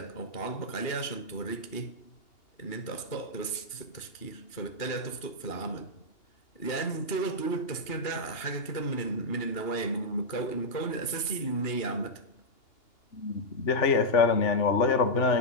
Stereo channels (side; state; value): right; late; 2.8 ms